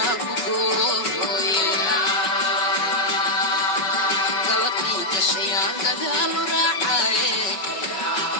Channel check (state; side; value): late; right; 5.3 ms